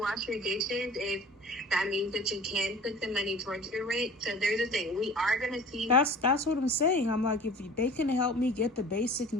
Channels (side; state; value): both; normal; correlation 0.43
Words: your dishes if that means that you can put some money towards your rent. So there's a thing. We are going to see. That's what I'm saying. I'm like, if they can help me get the basic